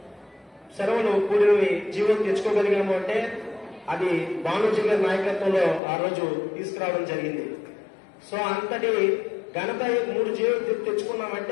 సెలవులు కూడినవి జీవం తెచ్చుకోగలిగాము అంటే అది భానుజీ గారి నాయకత్వంలో ఆ రోజు తీసుకురావడం జరిగింది. సో అంతటి ఘనత 3 జీవో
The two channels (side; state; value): right; drops out; at 5.8 s